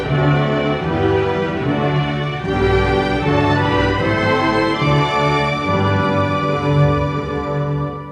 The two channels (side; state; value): both; identical; correlation 1.00